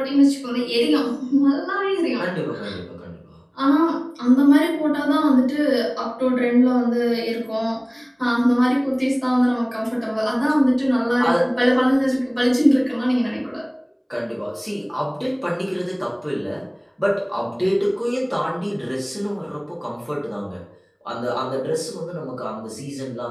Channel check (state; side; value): identical; both; correlation 1.00